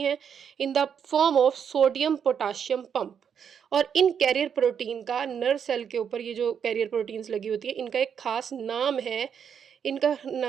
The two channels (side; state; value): left; quieter; 7.7 dB